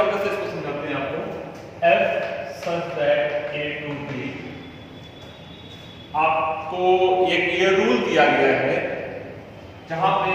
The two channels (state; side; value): identical; both; correlation 1.00